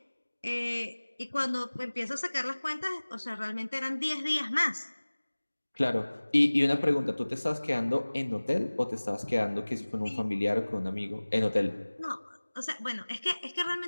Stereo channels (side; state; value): both; inverted; correlation -1.00